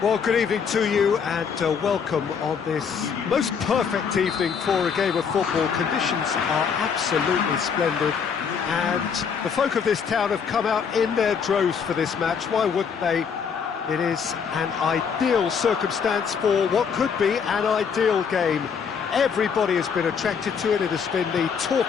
Well, good evening to you and welcome on this most perfect evening for a game of football. Conditions are absolutely splendid and the folk of this town have come out in their droves for this match. Why wouldn't they? It is an ideal circumstance for what could be an ideal game. Everybody has been attracted to it. It has been the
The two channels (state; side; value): quieter; right; 6.5 dB